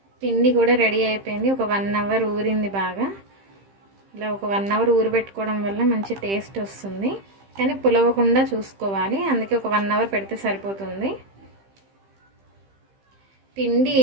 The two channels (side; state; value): left; late; 15 ms